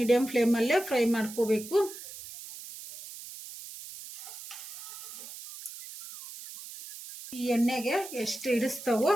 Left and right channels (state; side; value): noise; right; hiss, 13 dB below the sound